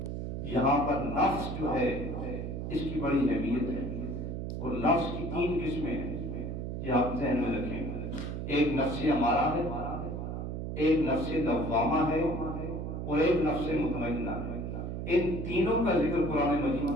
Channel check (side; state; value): right; noise; hum, 4 dB below the sound